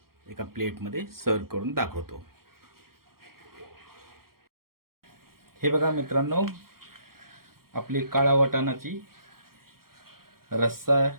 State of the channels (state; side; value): late; left; 0.93 ms